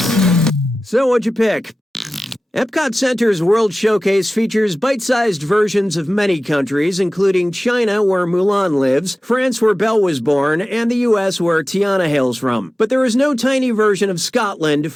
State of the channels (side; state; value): both; normal; correlation 0.96